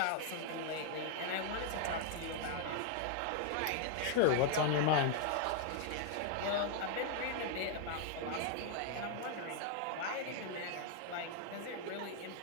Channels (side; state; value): both; different; correlation 0.00